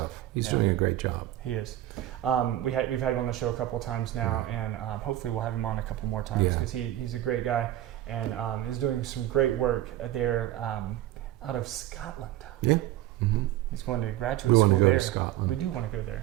He's Yeah. doing a great job. He is. We've had him on the show a couple of times now, and hopefully we'll have him on a couple more times because he's a great guy and is doing some great work there out of Scotland. Yeah. Mm-hmm. He's going to graduate We school want to go there. to Scotland. We do want to go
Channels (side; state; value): left; quieter; 14.1 dB